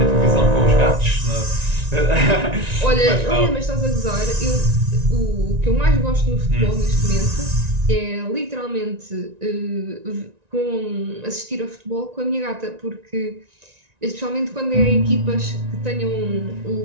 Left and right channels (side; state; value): left; late; 1.9 ms